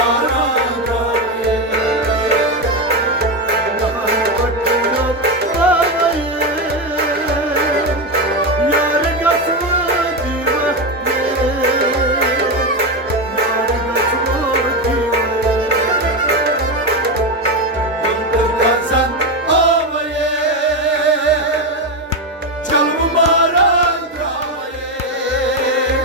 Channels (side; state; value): both; normal; correlation 0.12